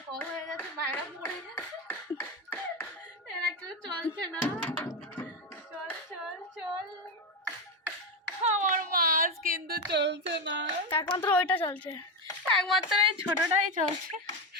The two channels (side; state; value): both; normal; correlation 0.12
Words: কম হয়ে গেছে, বাইরে পড়ে গেছে। এরা কেউ চলছে না। চল চল চল। আমার মাছ কিন্তু চলছে না, একমাত্র ওইটা চলছে, একমাত্র এই ছোটটাই চলছে